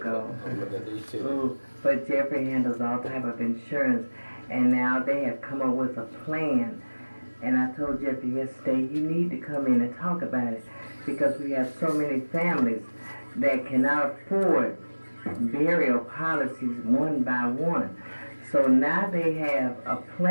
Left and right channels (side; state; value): both; inverted; correlation -1.00